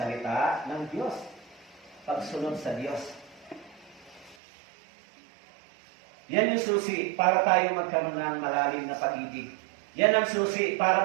ng Diyos. Pagsunod sa Diyos. Yan yung susi para tayo magkaroon ng malalim na pag-ibig. Yan ang susi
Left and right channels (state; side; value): drops out; left; at 4.4 s